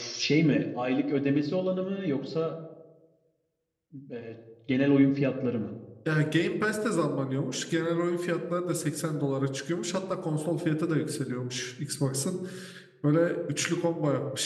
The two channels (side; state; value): both; identical; correlation 1.00